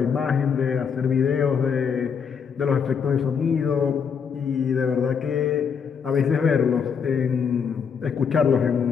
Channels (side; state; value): right; quieter; 6.6 dB